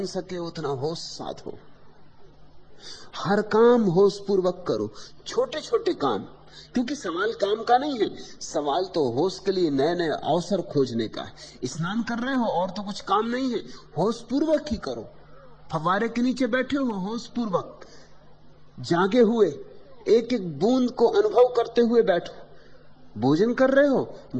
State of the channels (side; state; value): both; identical; correlation 1.00